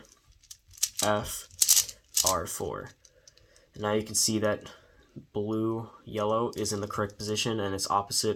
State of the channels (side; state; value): both; identical; correlation 1.00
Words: F, R4. And now you can see that blue, yellow is in the correct position, and it's